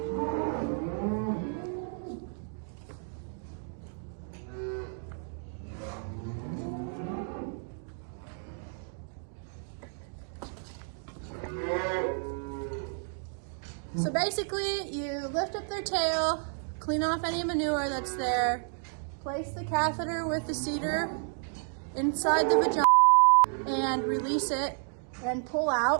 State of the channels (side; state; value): left; silent; 57 dB below the other